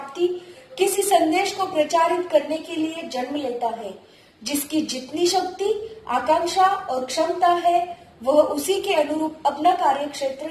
किसी संदेश को प्रचारित करने के लिए जन्म लेता है। जिसकी जितनी शक्ति, आकांक्षा और क्षमता है, वह उसी के अनुरूप अपना कार्यक्षेत्र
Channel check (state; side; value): identical; both; correlation 1.00